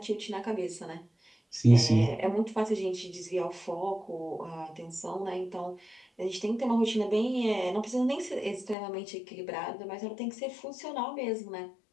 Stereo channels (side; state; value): right; drops out; at 8.8 s